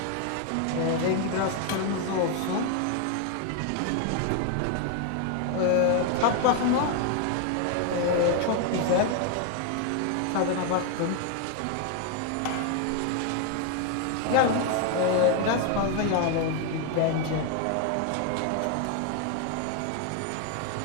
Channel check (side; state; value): both; different; correlation 0.01